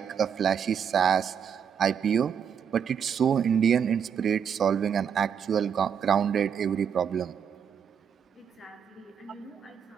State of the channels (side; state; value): left; quieter; 7.7 dB